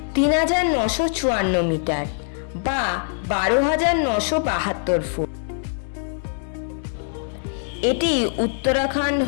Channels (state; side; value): silent; right; 64 dB below the other